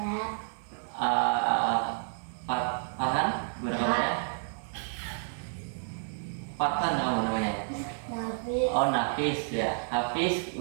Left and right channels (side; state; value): left; silent; digital silence